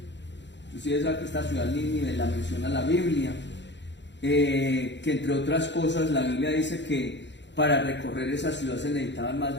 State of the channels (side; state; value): right; late; 0.52 ms